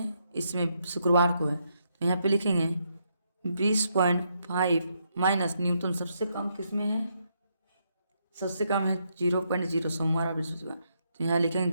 इसमें शुक्रवार को है, तो यहाँ पे लिखेंगे 20.5 माइनस न्यूनतम सबसे कम किस में है, सबसे कम है 0.0 सोमवार और बृहस्पतिवार, तो यहाँ लिखेंगे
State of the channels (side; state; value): both; inverted; correlation -0.77